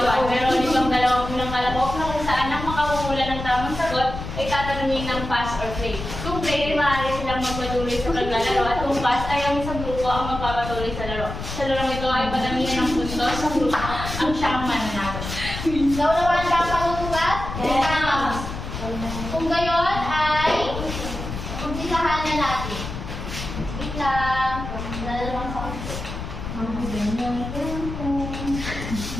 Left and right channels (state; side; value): noise; left; rumble, 7 dB below the sound